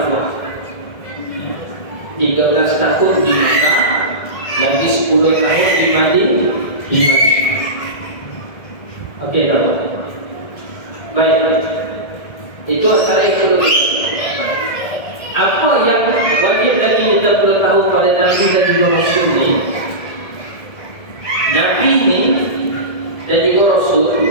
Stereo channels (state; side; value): late; right; 1.7 ms